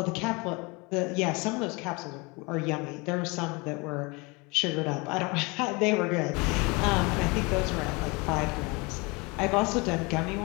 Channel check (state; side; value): quieter; right; 27.2 dB